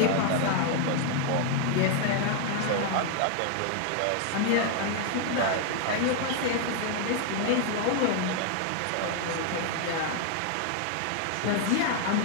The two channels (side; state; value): both; different; correlation 0.00